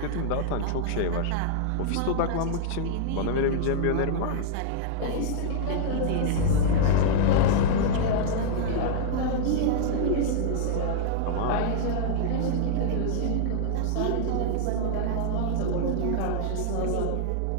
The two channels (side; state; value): both; different; correlation -0.01